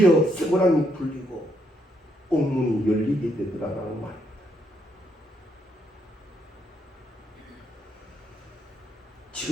쇠고랑이 풀리고 옥문이 열리게 되더라라는 말입니다.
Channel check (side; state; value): both; normal; correlation 0.75